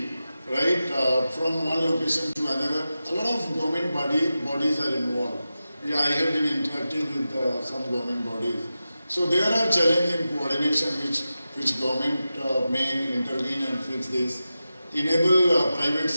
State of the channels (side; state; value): both; inverted; correlation -0.93